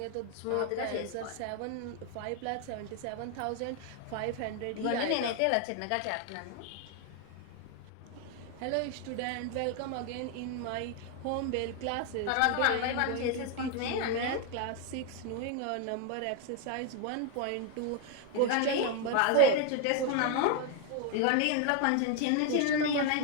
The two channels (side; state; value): both; different; correlation 0.01